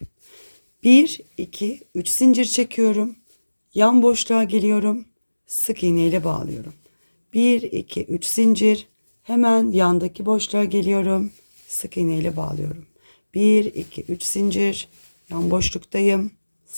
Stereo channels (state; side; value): inverted; both; correlation -1.00